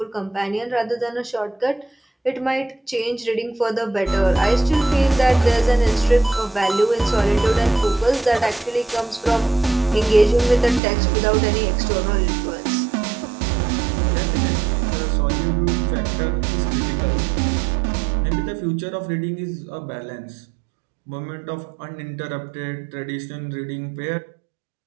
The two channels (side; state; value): left; drops out; at 10.8 s